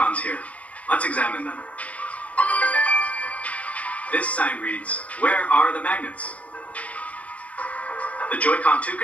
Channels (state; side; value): late; right; 0.072 ms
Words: here. Let's examine them. This sign reads, "Where are the magnets?" The Joy-Con 2